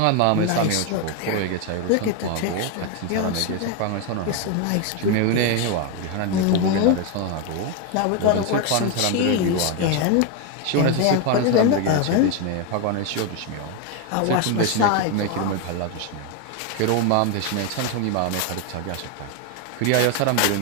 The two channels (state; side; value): different; both; correlation 0.02